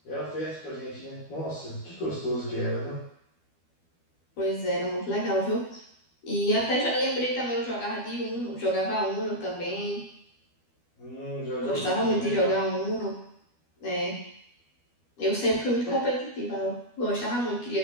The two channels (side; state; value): right; late; 12 ms